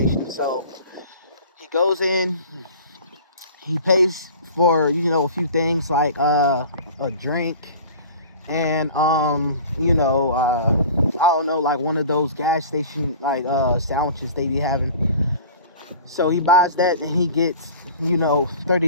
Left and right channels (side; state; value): both; inverted; correlation -0.42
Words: So he goes in, he pays for, you know, a few things like a drink and I don't know, like one of those gas station like sandwiches they be having. So he buys that and he gets, you know,